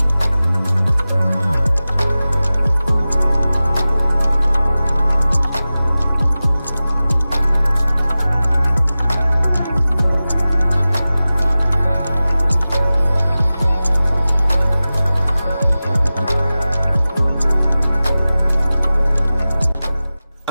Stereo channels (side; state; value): both; inverted; correlation -0.96